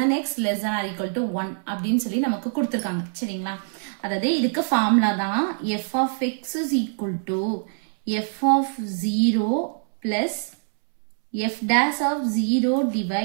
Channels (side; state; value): left; silent; 62 dB below the other